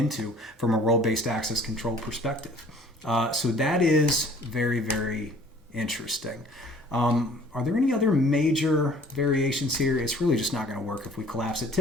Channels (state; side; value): normal; both; correlation 0.53